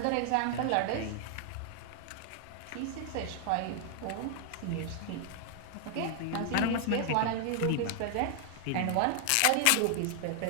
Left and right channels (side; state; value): both; different; correlation 0.00